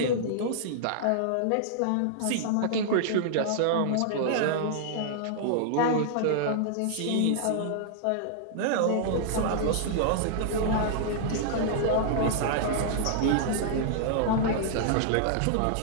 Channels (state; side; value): different; both; correlation -0.01